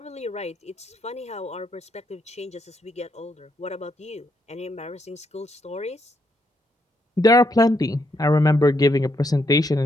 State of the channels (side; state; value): both; normal; correlation 0.76